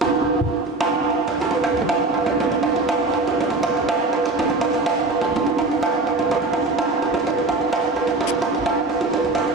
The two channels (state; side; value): quieter; left; 3.1 dB